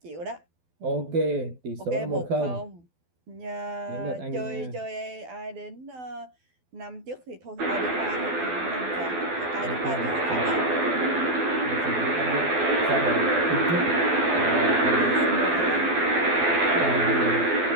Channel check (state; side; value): late; left; 12 ms